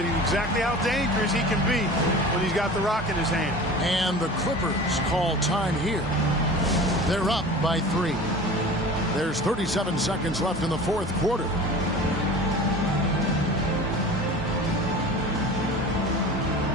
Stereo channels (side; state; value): both; normal; correlation 0.38